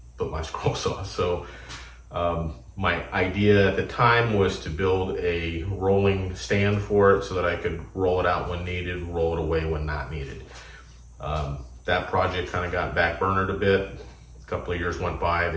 put my scroll saw. So my idea at the time was to build a rolling stand for it so that I could roll it out when needed, roll it away when not needed. That project kind of got backburnered a bit. A couple of years went by, the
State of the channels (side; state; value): both; identical; correlation 1.00